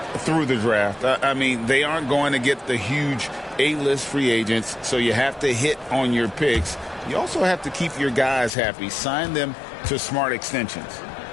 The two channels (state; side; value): drops out; right; at 8.5 s